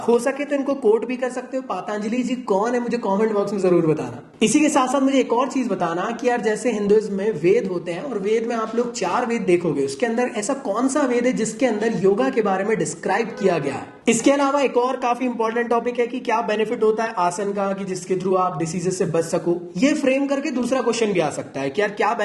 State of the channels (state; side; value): identical; both; correlation 1.00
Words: हो सके तो इनको कोट भी कर सकते हो। पतंजलि जी कौन है मुझे कॉमेंट बॉक्स में जरूर बताना। इसी के साथ साथ मुझे एक और चीज बताना कि यार जैसे हिंदुइज्म में वेद होते हैं और वेद में आप लोग 4 वेद देखोगे, उसके अंदर ऐसा कौन सा वेद है जिसके अंदर योगा के बारे में डिस्क्राइब किया गया है। इसके अलावा एक और काफी इंपॉर्टेंट टॉपिक है कि क्या बेनिफिट होता है आसन का कि जिसके थ्रू आप डिसीजेस से बच सको। ये फ्रेम करके दूसरा क्वेश्चन भी आ सकता है कि यार क्या